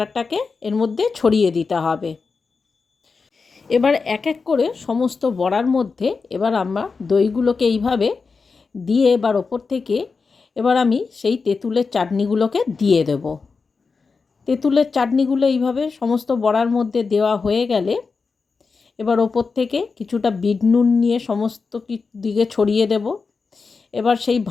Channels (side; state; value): right; quieter; 4.7 dB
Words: এর মধ্যে ছড়িয়ে দিতে হবে। এবার এক এক করে সমস্ত বড়ার মধ্যে এবার আমরা দইগুলোকে এইভাবে দিয়ে এবার ওপর থেকে এবার আমি সেই তেঁতুলের চাটনিগুলোকে দিয়ে দেব। তেঁতুলের চাটনিগুলো এইভাবে সমস্ত বড়ার মধ্যে দেওয়া হয়ে গেলে এবার ওপর থেকে কিছুটা বিট নুন নিয়ে সমস্ত দিকে ছড়িয়ে দেব। এবার সেই